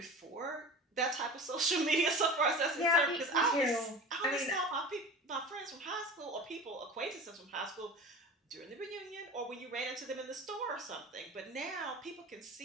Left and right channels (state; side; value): normal; both; correlation 0.35